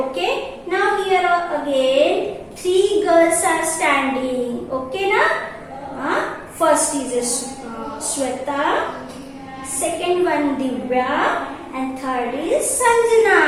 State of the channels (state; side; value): identical; both; correlation 1.00